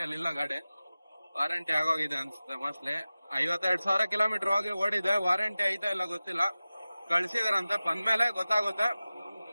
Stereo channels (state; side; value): inverted; both; correlation -0.97